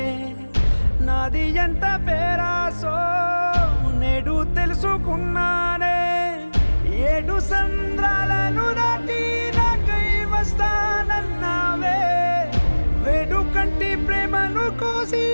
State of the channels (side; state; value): both; inverted; correlation -1.00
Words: నాది ఎంత పేరాసో నేడు తెలుసుకున్నానే 7 సంద్రాలను దాటి నాకై వస్తానన్నావే వేడు కంటి ప్రేమను కోసి